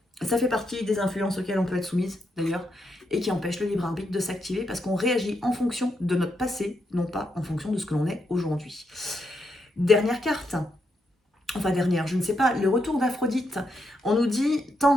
ça fait partie des influences auxquelles on peut être soumise, d'ailleurs, et qui empêchent le libre arbitre de s'activer parce qu'on réagit en fonction de notre passé, non pas en fonction de ce que l'on est aujourd'hui. Dernière carte. Enfin dernière, je ne sais pas, le retour d'Aphrodite. On nous dit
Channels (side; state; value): both; normal; correlation 0.81